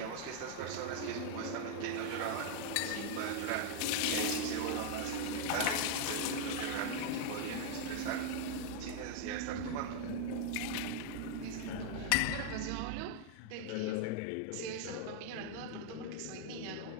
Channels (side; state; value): both; different; correlation 0.00